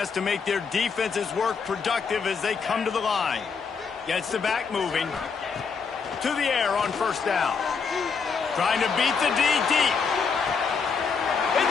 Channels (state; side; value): quieter; right; 5.5 dB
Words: to make their defenses work productive as they come to the line. Gets the back moving. To the air on first down. Trying to beat the D deep.